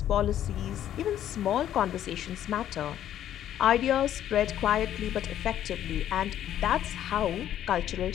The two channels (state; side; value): quieter; right; 11.3 dB